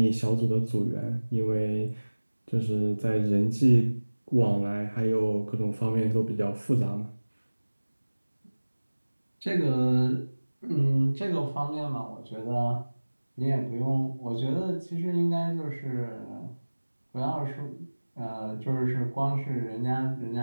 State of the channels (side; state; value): both; inverted; correlation -1.00